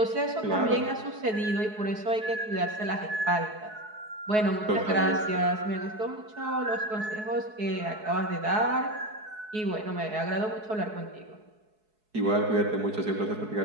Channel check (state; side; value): late; left; 4.7 ms